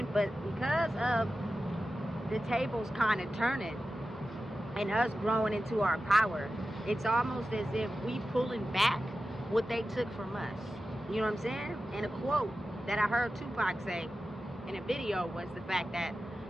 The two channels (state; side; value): normal; both; correlation 0.93